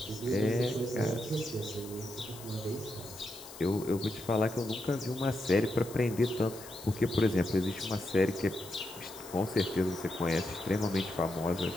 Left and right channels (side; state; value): left; noise; hiss, 16 dB below the sound